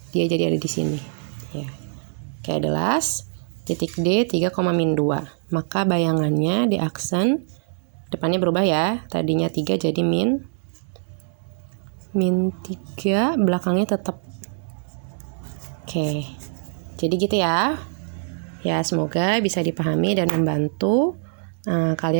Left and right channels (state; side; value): silent; left; digital silence